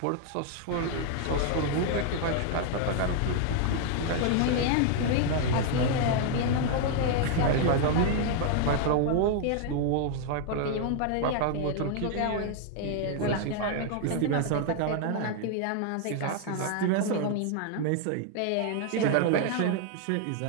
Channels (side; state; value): both; different; correlation 0.00